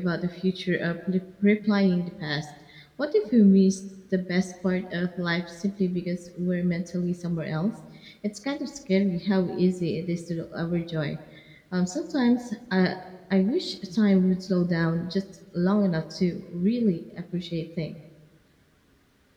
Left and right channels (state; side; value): identical; both; correlation 1.00